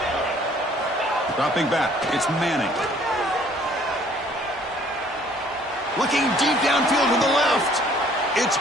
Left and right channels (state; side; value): normal; both; correlation 0.58